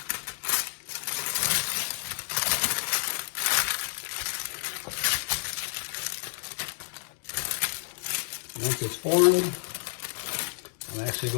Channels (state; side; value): silent; right; digital silence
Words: Once it's formed, I'm actually